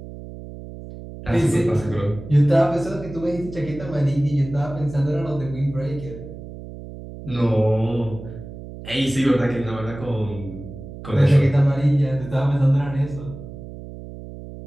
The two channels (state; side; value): noise; right; hum, 13 dB below the sound